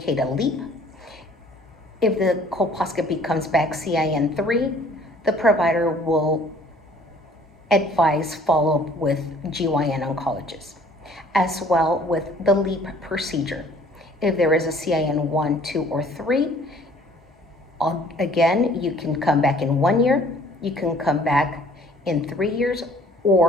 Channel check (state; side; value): normal; both; correlation 0.55